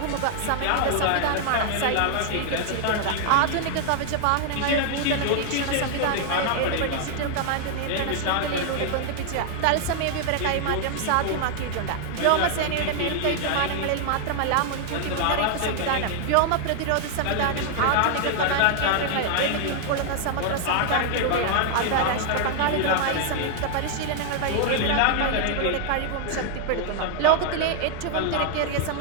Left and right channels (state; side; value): different; both; correlation 0.00